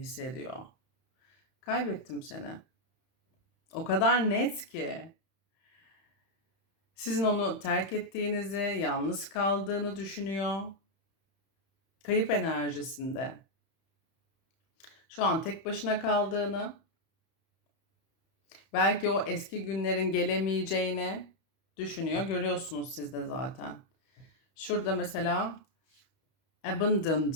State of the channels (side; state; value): right; late; 31 ms